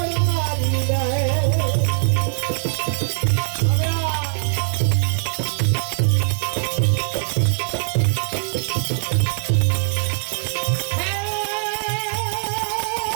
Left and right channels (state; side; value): silent; left; 65 dB below the other